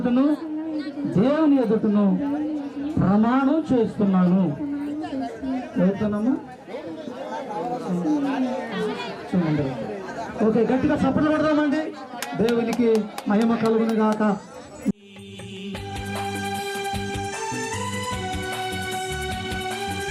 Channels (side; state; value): both; identical; correlation 1.00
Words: దేవుని ఎదుటను ప్రమాణం చేస్తున్నాను. చదువుతున్నాము. చూడండి. ఓకే, గట్టిగా చప్పట్లు కొడదామండి. దేవునికి మహిమ కలుగును గాక.